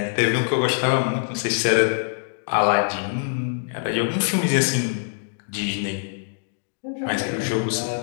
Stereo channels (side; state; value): right; silent; digital silence